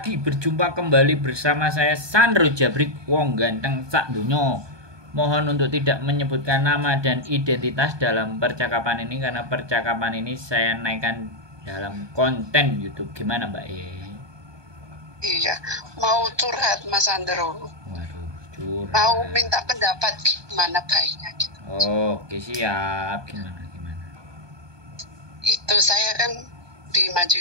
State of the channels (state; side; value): late; left; 1.2 ms